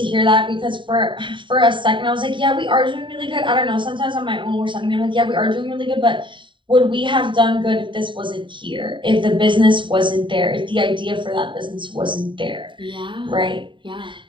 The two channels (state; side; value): late; left; 0.24 ms